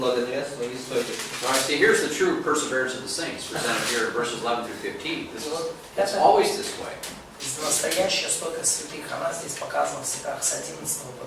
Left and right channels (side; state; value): both; identical; correlation 1.00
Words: своей стойкости. Now I see here's the true perseverance of the saints, presented here in verses 11 through 15. И вот It's это always this way. настоящая стойкость святых, она здесь показана в стихах с 11 по